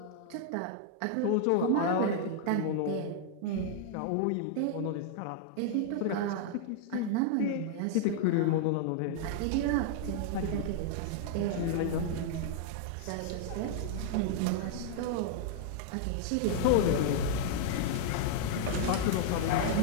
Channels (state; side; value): different; both; correlation -0.01